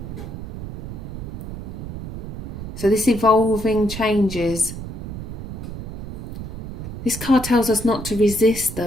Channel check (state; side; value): noise; right; rumble, 8 dB below the sound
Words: So this evolving changes. This card tells us not to resist